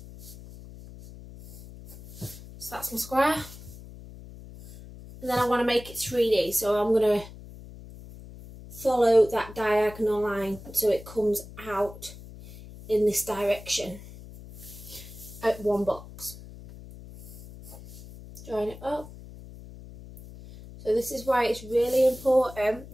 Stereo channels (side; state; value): left; noise; hum, 16 dB below the sound